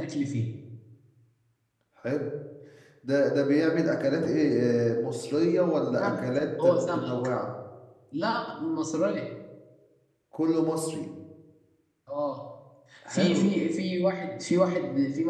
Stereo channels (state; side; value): identical; both; correlation 1.00